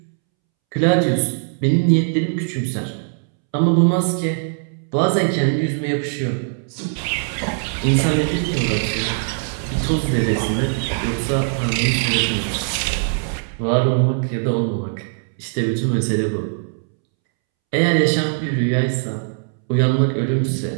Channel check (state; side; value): silent; left; 65 dB below the other